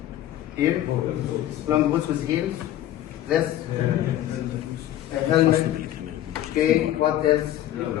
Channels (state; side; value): quieter; right; 12.7 dB